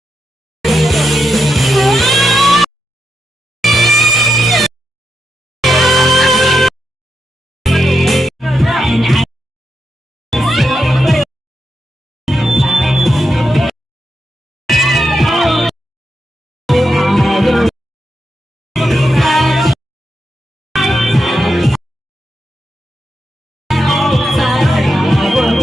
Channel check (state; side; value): normal; both; correlation 0.85